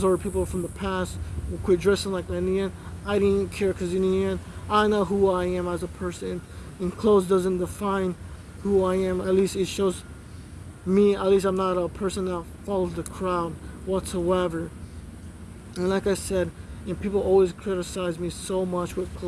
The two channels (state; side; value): identical; both; correlation 1.00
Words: are people from the past who quit dressing like that. In the end, I didn't care, because in the end, I know who I am as a person, and clothes doesn't define who I am. At least it shows me. At least I'm not a person that follows the crowd whatsoever. And like I said, and people always criticize me so much with